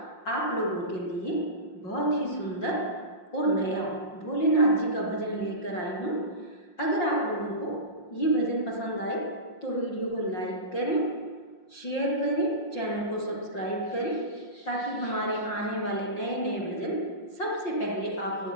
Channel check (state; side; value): late; right; 5.6 ms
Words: आप लोगों के लिए बहुत ही सुंदर और नया भोलेनाथ जी का भजन लेकर आई हूँ। अगर आप लोगों को ये भजन पसंद आए तो वीडियो को लाइक करें, शेयर करें, चैनल को सब्सक्राइब करें ताकि हमारे आने वाले नए नए भजन सबसे पहले आप